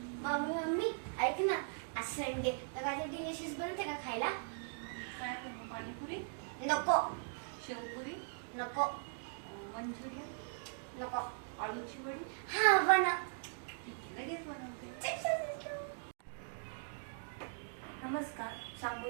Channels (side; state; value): left; silent; digital silence